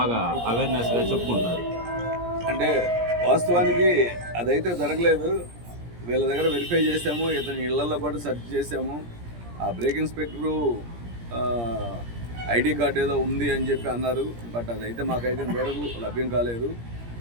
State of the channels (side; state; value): left; late; 17 ms